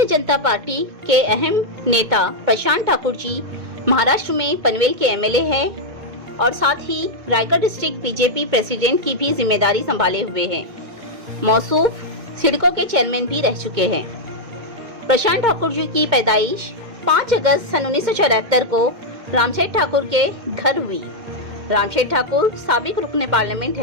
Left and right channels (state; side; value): late; left; 2.1 ms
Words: जनता पार्टी के अहम नेता प्रशांत ठाकुर जी महाराष्ट्र में पनवेल के एमएलए हैं और साथ ही रायगढ़ डिस्ट्रिक्ट बीजेपी प्रेसिडेंट की भी जिम्मेदारी संभाले हुए हैं। मौसूफ सिडको के चेयरमैन भी रह चुके हैं। प्रशांत ठाकुर जी की पैदाइश 5 अगस्त सन 1974 को रामसेठ ठाकुर के घर हुई। रामसेठ ठाकुर साबिक रुकने पार्लियामेंट